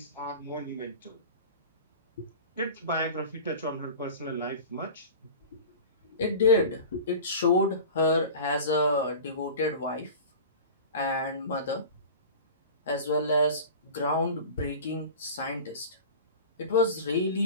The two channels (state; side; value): inverted; both; correlation -0.36